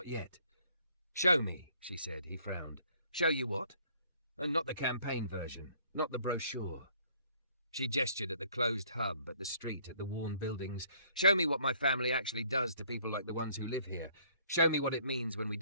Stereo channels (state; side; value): inverted; both; correlation -0.61